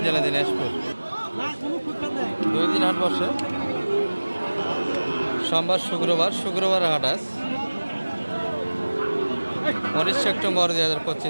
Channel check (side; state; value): both; inverted; correlation -1.00